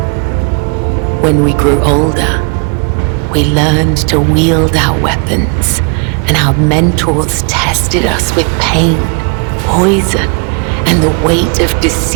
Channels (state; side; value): quieter; left; 35.0 dB